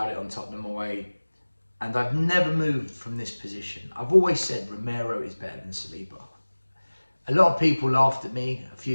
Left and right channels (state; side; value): inverted; both; correlation -1.00